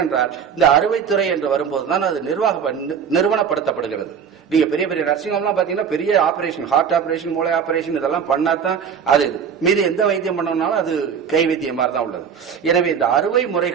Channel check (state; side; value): quieter; left; 7.2 dB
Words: இந்த அறுவைத்துறை என்று வரும்போதுதான் அது நிறுவனப்படுத்தப்படுகிறது. நீங்க பெரிய பெரிய நர்சிங் ஹோம்லாம் பாத்தீங்கன்னா பெரிய ஆபரேஷன், ஹார்ட் ஆபரேஷன், மூளை ஆபரேஷன் இதெல்லாம் பண்ணாதான் அது மீது எந்த வைத்தியம் பண்ணோம்னாலும் அது கை வைத்தியம் மாதிரி தான் உள்ளது. எனவே இந்த அறுவை